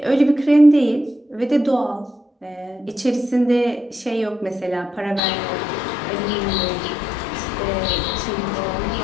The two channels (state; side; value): drops out; right; at 5.2 s